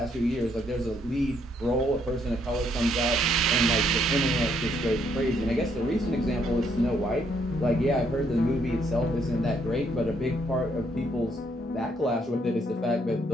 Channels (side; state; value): both; normal; correlation 0.71